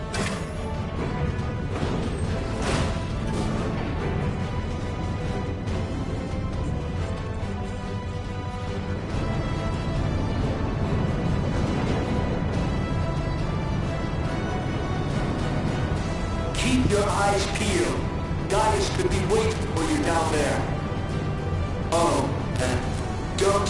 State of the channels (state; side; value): identical; both; correlation 1.00